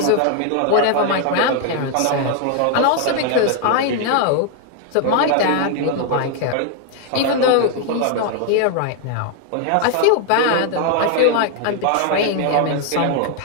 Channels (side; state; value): both; different; correlation 0.00